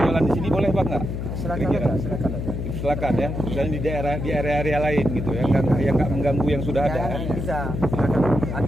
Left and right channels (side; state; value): left; noise; hum, 4 dB below the sound